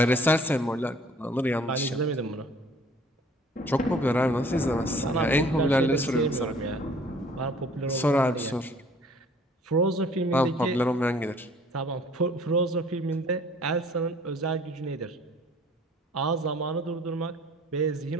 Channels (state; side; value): normal; both; correlation 0.54